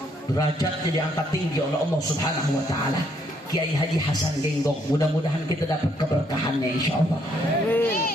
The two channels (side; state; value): both; normal; correlation 0.70